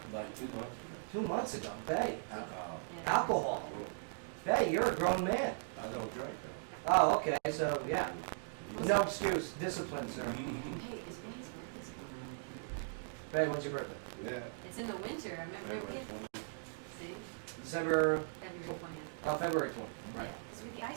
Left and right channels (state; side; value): silent; left; digital silence